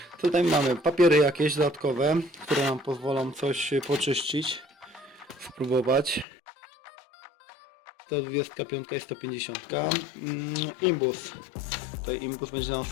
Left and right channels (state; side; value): drops out; right; at 6.2 s